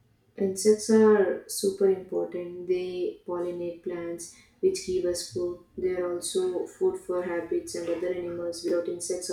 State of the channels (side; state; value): both; identical; correlation 1.00